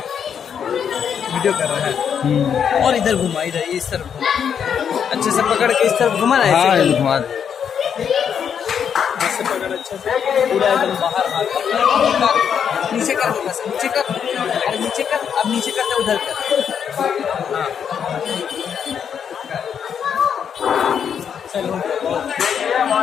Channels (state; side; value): quieter; right; 7.8 dB